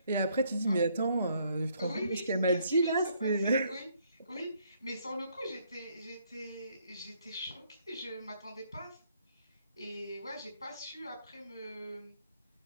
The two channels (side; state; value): both; inverted; correlation -0.69